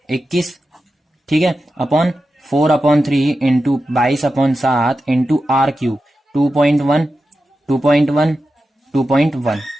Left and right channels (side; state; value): both; normal; correlation 0.91